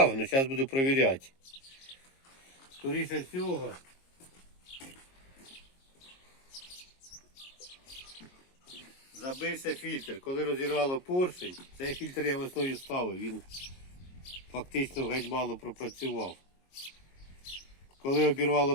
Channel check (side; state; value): right; late; 22 ms